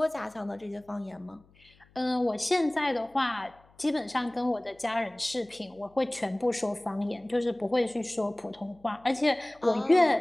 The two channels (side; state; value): left; noise; hum, 30 dB below the sound